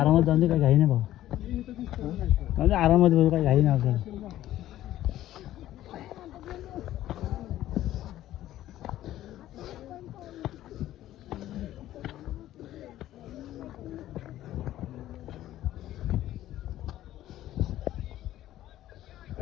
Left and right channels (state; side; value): quieter; right; 13.6 dB